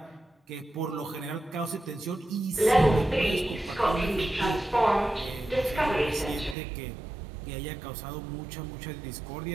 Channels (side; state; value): left; drops out; at 6.6 s